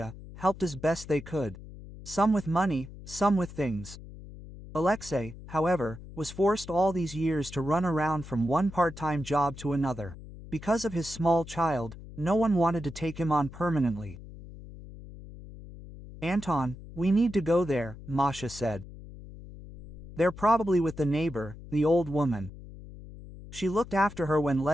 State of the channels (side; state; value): left; noise; hum, 15 dB below the sound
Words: helped as best they could. Some with money, some with things. Alexei, however, was forced all these years to run around from one part-time job to another. Because of his small child, no one wanted to take him on permanently. "Anton, we need to go there," Masha said. "They're probably with the neighbor, the old woman. She looked after her when